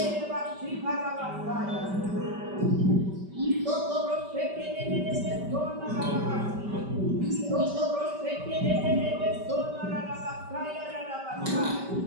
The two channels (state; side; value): late; left; 5.1 ms